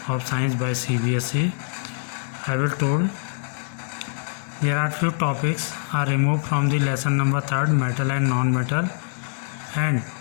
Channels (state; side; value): silent; right; 62 dB below the other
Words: of science by CBSE. I will told there are few topics are removed from the lesson number 3, metal and non-metal, and